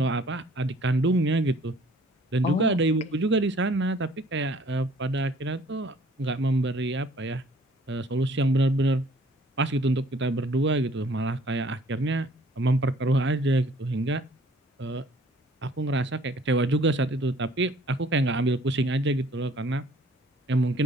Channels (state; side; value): normal; both; correlation 0.56